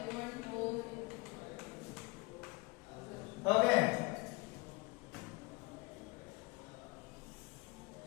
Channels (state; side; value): quieter; right; 25.4 dB